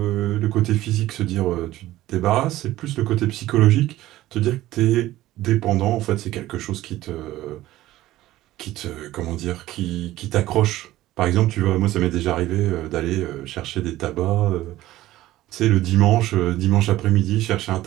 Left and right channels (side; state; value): left; quieter; 15.6 dB